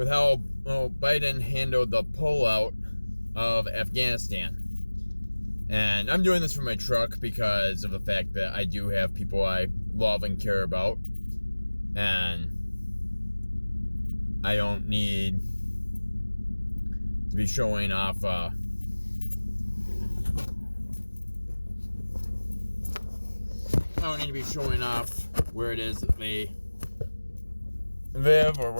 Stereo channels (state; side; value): inverted; both; correlation -1.00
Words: how Biden handled the pullout of Afghanistan. And I'm doing this for my truck because of the fact that I do have people I love and care about. And I don't need to be showing off I don't need to be showing off where it is that they live or